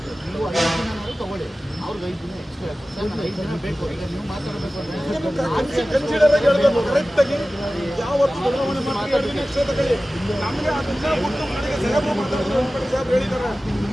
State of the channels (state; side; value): normal; both; correlation 0.96